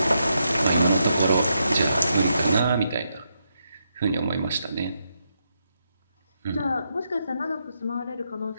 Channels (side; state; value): both; inverted; correlation -0.82